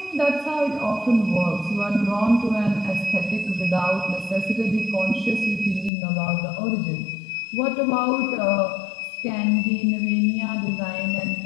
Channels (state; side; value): drops out; right; at 5.9 s